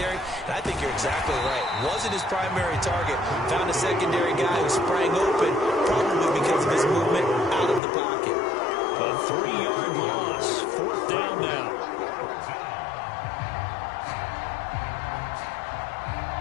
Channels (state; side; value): drops out; right; at 7.8 s